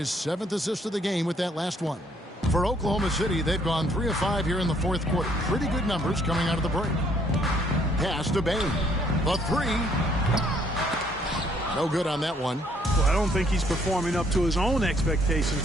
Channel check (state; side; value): normal; both; correlation 0.66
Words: 7th assist of the game with that last one. For Oklahoma City, they've gone 3 of 5 here in the fourth quarter. Pretty good numbers coming out of the break. Pass to Bane. The three. No good on that one. Well, I don't think he's performing up to his own expectations,